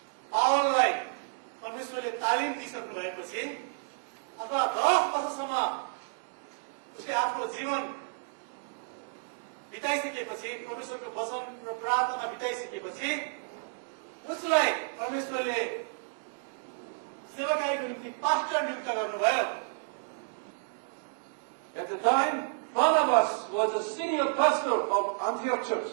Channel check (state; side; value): silent; left; digital silence